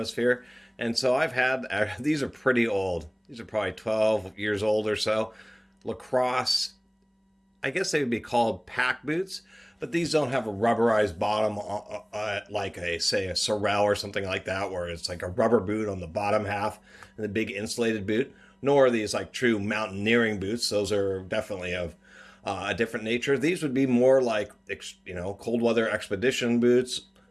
and so I've had, these are pretty old. These are probably 12 years old or so. LaCrosse, I guess they would be called pack boots, but these don't have a rubberized bottom like say a Sorel or something like that, where it's like a rubber boot on the bottom half and the big insulated boot. Nor are these like true mountaineering boots. Those are definitely of a different nature. These would be more like, cold weather expedition boots,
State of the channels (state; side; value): identical; both; correlation 1.00